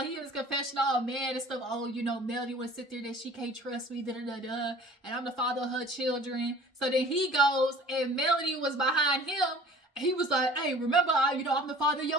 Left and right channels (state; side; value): normal; both; correlation 0.47